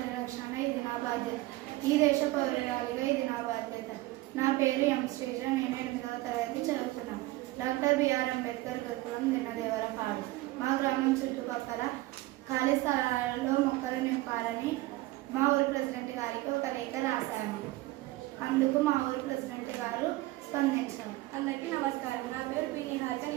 ఇది నా బాధ్యత. ఈ దేశ పౌరురాలిగా ఇది నా బాధ్యత. నా పేరు ఎం శ్రీజ. నేను 8వ తరగతి చదువుతున్నాను. డాక్టర్ బిఆర్ అంబేద్కర్ గురుకులం దిన్నదేవరపాడు. మా గ్రామం చుట్టుపక్కల ఖాళీ స్థలాలలో మొక్కలు నింపాలని మా ఊరి ప్రెసిడెంట్ గారికి ఒక లేఖ రాశాను. అందుకు మా ఊరి ప్రెసిడెంట్ గారు స్పందించారు. అందరికీ నమస్కారం. నా పేరు పి నిహారిక.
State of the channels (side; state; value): left; quieter; 18.7 dB